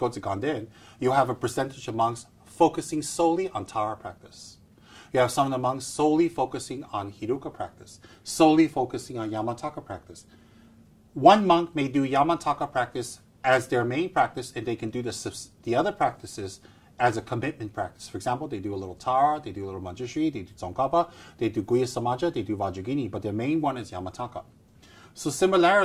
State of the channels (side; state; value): both; identical; correlation 1.00